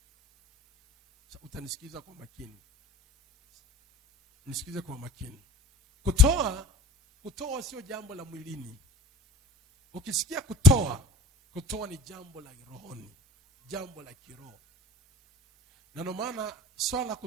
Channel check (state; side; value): normal; both; correlation 0.42